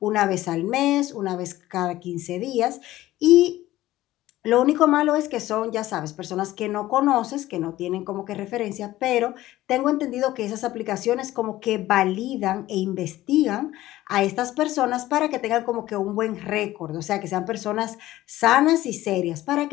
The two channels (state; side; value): quieter; right; 15.7 dB